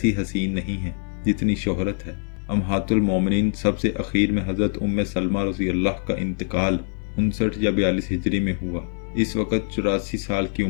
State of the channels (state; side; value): silent; right; digital silence